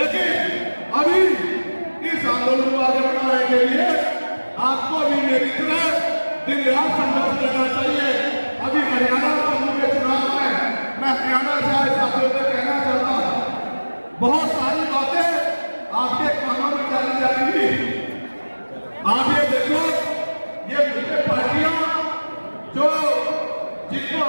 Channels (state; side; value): inverted; both; correlation -1.00